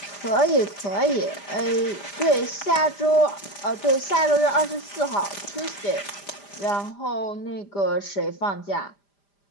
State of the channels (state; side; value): late; right; 5.0 ms